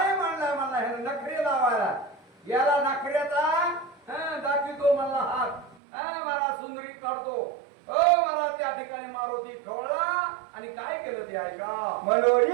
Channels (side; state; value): left; drops out; at 5.8 s